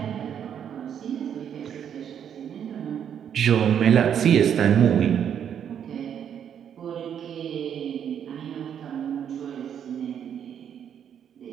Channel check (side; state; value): left; quieter; 8.7 dB